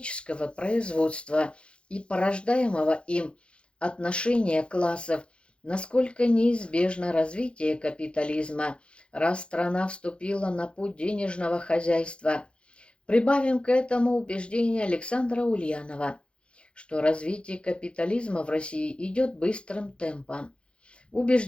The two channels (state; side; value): late; right; 0.057 ms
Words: производства и порождаемого им отношения классов, насколько неизбежно развитие капитализма, раз страна вступила на путь денежного хозяйства. Прибавим к этому убеждение Александра Ульянова, что развитие капитализма в России идет быстрым темпом.